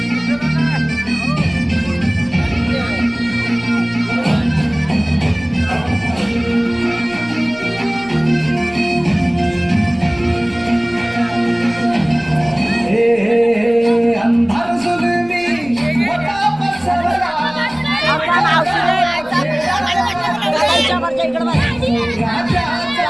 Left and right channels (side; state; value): left; noise; rumble, 22 dB below the sound